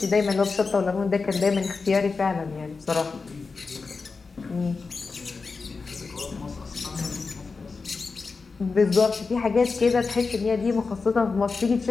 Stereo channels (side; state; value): right; quieter; 4.4 dB